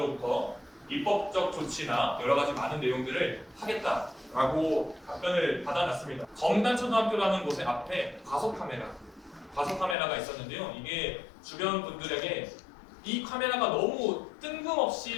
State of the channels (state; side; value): drops out; right; at 10.0 s